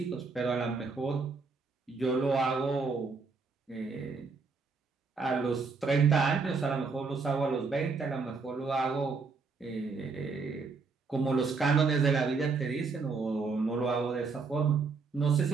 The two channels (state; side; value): quieter; left; 4.6 dB